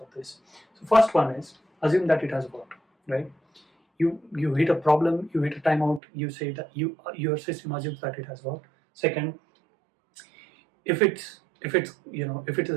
of this. So first one is assume that it has worked, right? You hit a problem, you hit a timeout, you say that your system assumes that it has worked. Second, if it's a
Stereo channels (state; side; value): drops out; left; at 6.0 s